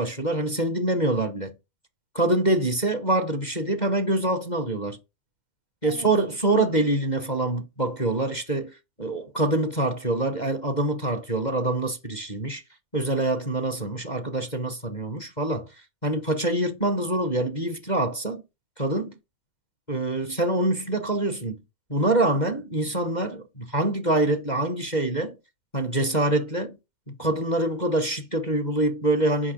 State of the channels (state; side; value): late; right; 2.1 ms